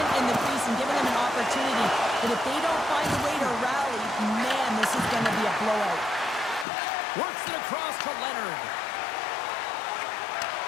in the crease and given them an opportunity. But if they don't find a way to rally, man, this is going to be a blowout. Works it across to Leonard.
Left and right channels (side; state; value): right; drops out; at 6.7 s